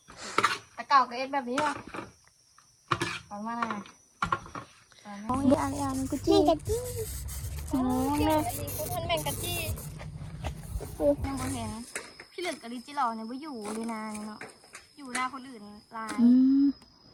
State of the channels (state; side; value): identical; both; correlation 1.00